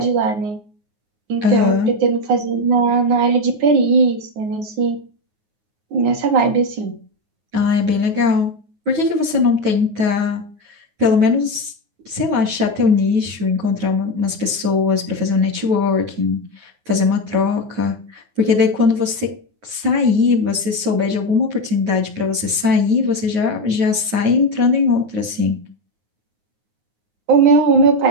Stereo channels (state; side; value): late; left; 9.5 ms